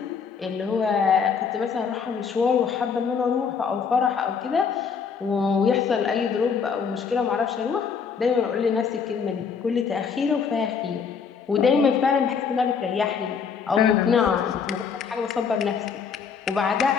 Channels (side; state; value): right; quieter; 6.2 dB